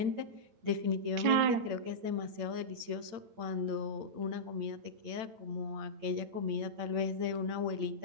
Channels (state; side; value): late; left; 8.7 ms